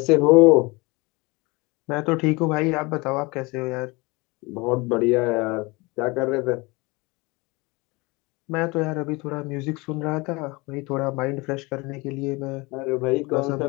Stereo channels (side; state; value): right; quieter; 25.1 dB